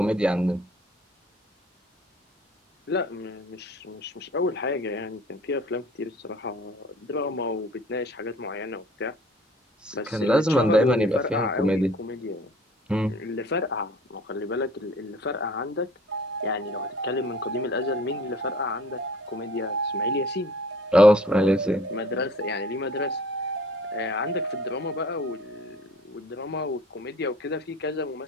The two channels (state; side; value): normal; both; correlation 0.50